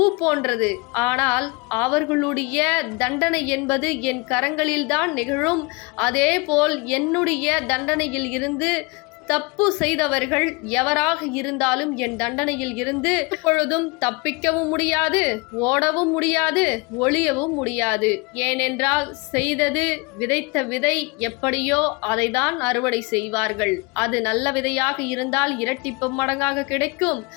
போன்றது. ஆனால் அவர்களுடைய தண்டனை என்பது என் கரங்களில்தான் நிகழும். அதேபோல் என்னுடைய தண்டனையில் இருந்து தப்பு செய்தவர்கள் எவராக இருந்தாலும் என் தண்டனையில் இருந்து எப்பொழுதும் தப்பிக்கவும் முடியாது, ஓடவும் முடியாது, ஒளியவும் முடியாது. ஏனென்றால் செய்தது, விதைத்த விதை எப்படியோ அதை தான் அறுவடை செய்வார்கள். அது நல்ல விதையாக இருந்தால் இரட்டிப்பு மடங்காக கிடைக்கும்.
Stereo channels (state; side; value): quieter; right; 27.7 dB